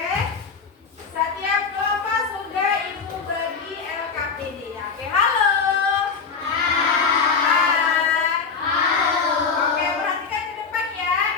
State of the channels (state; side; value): quieter; right; 5.4 dB